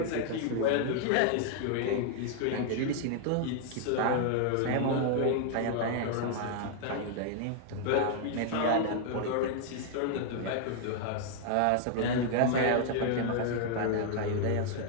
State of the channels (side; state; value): both; different; correlation 0.00